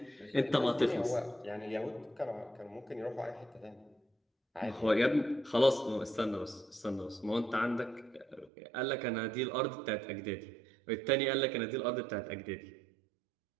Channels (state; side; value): drops out; left; at 8.5 s